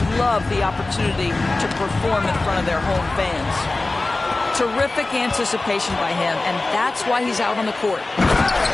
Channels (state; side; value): quieter; right; 3.1 dB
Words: love the opportunity to perform in front of their home fans. Terrific anticipation by him, and that's why he's out on the court.